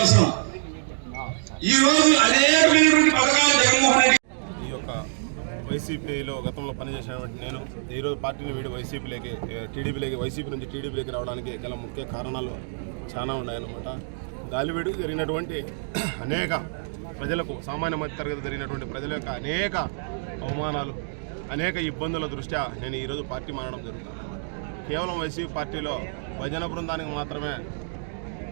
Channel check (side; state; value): left; silent; digital silence